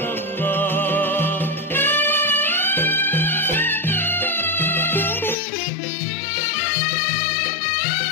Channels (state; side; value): drops out; right; at 5.4 s